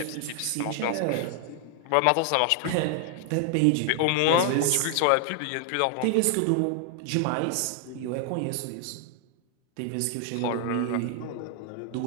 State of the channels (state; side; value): different; both; correlation 0.00